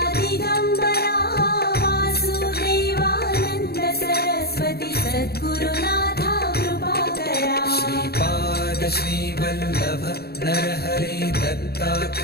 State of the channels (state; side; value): late; right; 0.46 ms